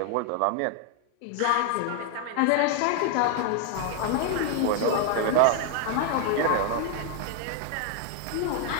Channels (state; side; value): different; both; correlation 0.00